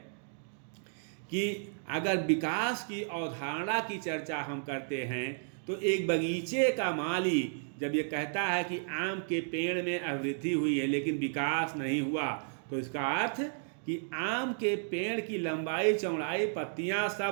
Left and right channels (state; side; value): silent; left; digital silence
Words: कि अगर विकास की अवधारणा की चर्चा हम करते हैं तो एक बगीचे का माली जब ये कहता है कि आम के पेड़ में अभिवृद्धि हुई है लेकिन विकास नहीं हुआ, तो इसका अर्थ कि आम के पेड़ की लंबाई, चौड़ाई, पत्तियां